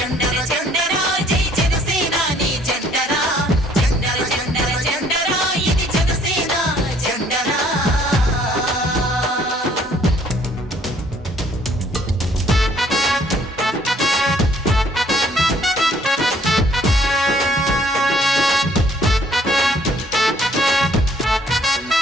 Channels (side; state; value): both; normal; correlation 0.61